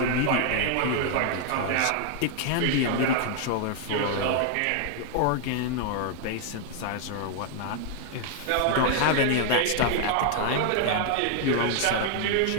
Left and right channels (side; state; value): both; different; correlation 0.00